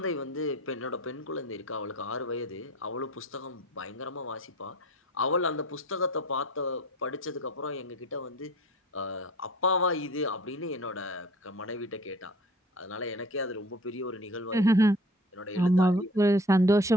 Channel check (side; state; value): both; normal; correlation 0.45